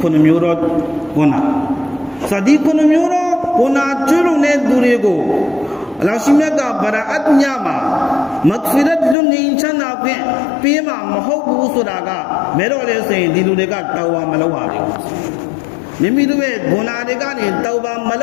9မျိုးတော့ဘုနာစဒီ9မျိုးတော့ဘုနာကျွလုံတဲ့သူတွေကိုအလ္လာဟ်ရှိမြတ်ကဗရာအတ်ညာမှာမဂ်ဖီရတ်လွန်ငင်းချမ်းသာဖြင့်ပေးမှာမဟုတ်ဘူးဆိုတာကမဲတော့လေဆိုရင်ဒီလူတွေကတောင်းဝမလုပ်ရဘူးမိမိတို့ရဲ့ဂုဏတွေကနေတောင်းပါမလ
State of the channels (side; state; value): right; drops out; at 9.2 s